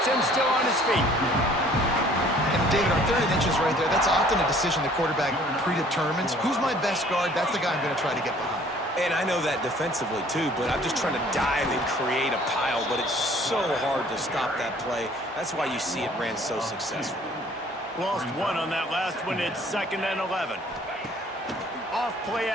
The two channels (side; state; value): both; normal; correlation 0.55